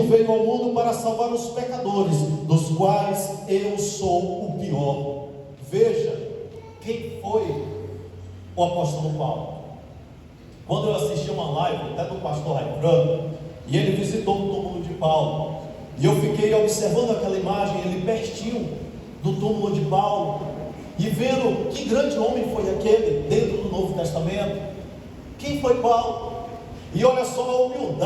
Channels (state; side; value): identical; both; correlation 1.00